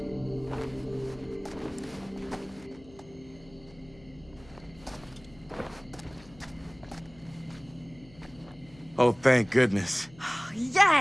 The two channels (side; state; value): left; noise; hum, 24 dB below the sound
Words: Oh, thank goodness.